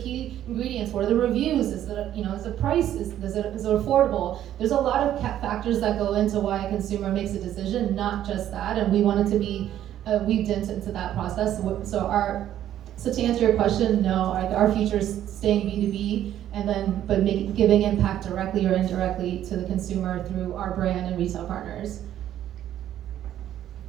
ingredients, what are the reviews, is it, is the price, is it affordable? There's a lot of factors that go into why a consumer makes a decision, not just that, and we want it to be weaved into that process. So to answer your question, no, our future is staying B2B, but giving impact directly or indirectly to the consumer through our brand and retail partners.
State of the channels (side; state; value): left; quieter; 11.6 dB